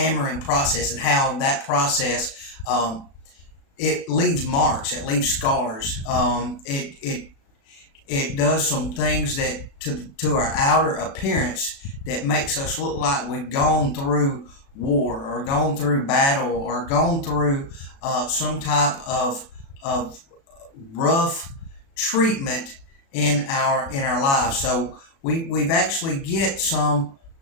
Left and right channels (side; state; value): right; late; 36 ms